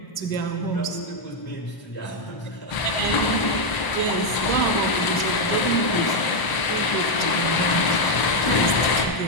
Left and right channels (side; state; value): right; late; 1.0 ms